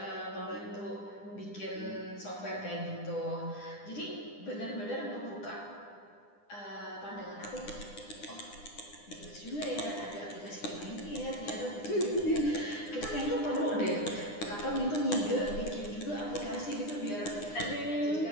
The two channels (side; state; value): right; late; 9.9 ms